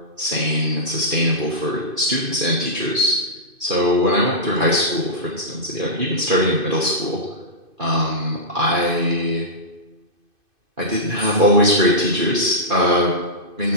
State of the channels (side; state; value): left; late; 2.5 ms